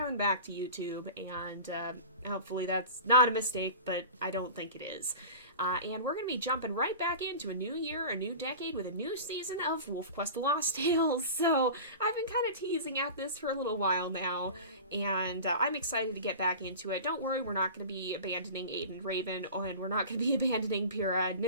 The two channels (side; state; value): both; inverted; correlation -0.34